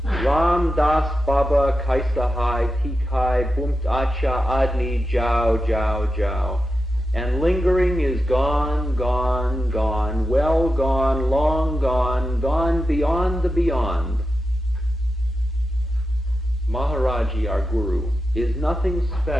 Ram Das Baba Kaisahai Tikai Bumt Acha Adni Jiao Jiao Jiao. And lingering is gone, gone, gone, well gone, long gone, gone beyond the beyond. Maharaji, our guru, is nothing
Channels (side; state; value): both; normal; correlation 0.90